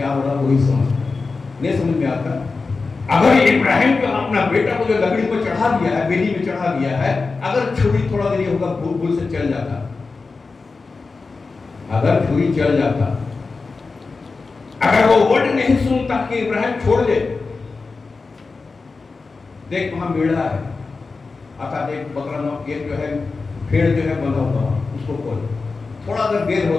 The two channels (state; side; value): quieter; right; 4.2 dB